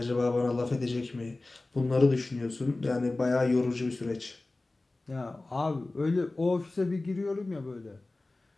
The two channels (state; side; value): quieter; right; 3.0 dB